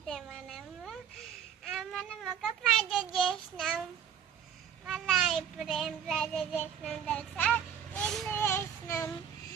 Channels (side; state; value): left; quieter; 8.4 dB